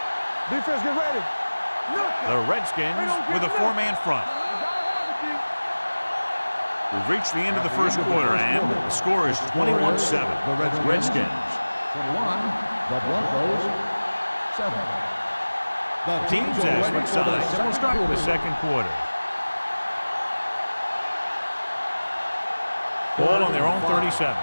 Defense, get ready. The Redskins with a 4-man front. We've reached the end of the first quarter, and the score is 21-7. The Redskins. 21. The Broncos 7. The Teams as switch sides. So we'll start with the second quarter. Ball on their own 37.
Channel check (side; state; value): both; inverted; correlation -1.00